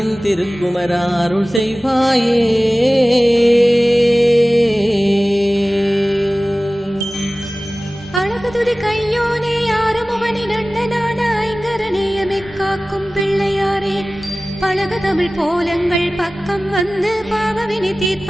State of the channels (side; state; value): both; normal; correlation 0.97